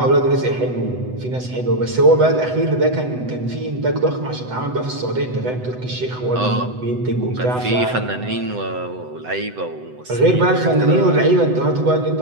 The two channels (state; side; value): late; left; 8.0 ms